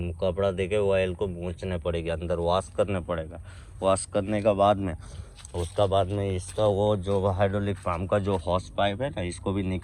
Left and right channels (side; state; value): both; identical; correlation 1.00